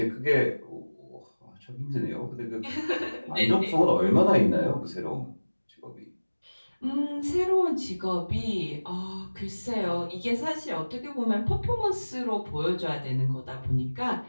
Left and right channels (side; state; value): both; inverted; correlation -1.00